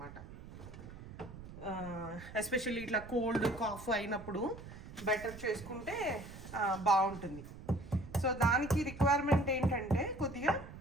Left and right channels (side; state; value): right; noise; rumble, 14 dB below the sound